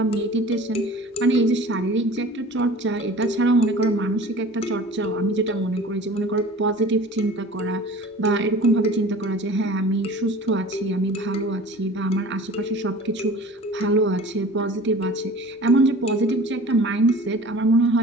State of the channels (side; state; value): both; normal; correlation 0.42